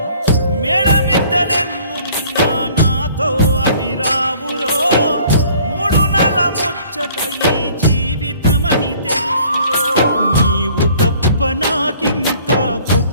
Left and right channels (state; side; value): inverted; both; correlation -0.55